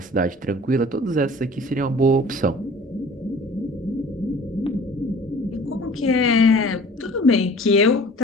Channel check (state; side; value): normal; both; correlation 0.47